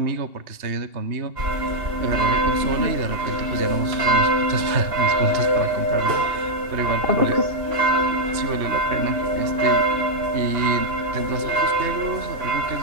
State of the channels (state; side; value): late; left; 2.9 ms